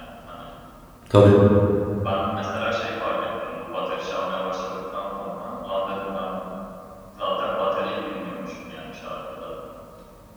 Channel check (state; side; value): identical; both; correlation 1.00